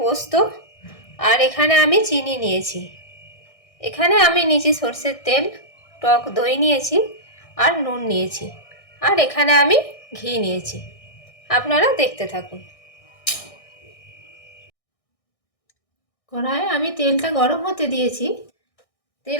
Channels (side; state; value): right; late; 1.6 ms